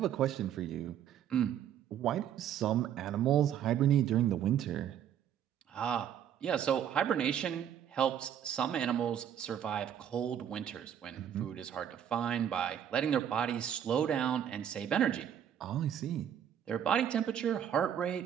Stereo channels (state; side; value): quieter; left; 9.5 dB